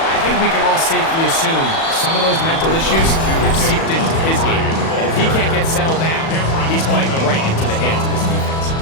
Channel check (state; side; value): late; right; 37 ms